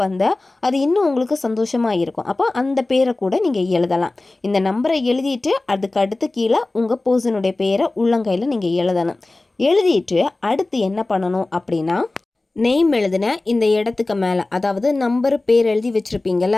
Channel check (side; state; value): right; quieter; 3.0 dB